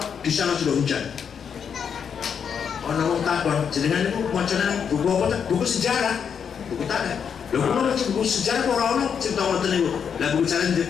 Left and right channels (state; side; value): quieter; right; 7.2 dB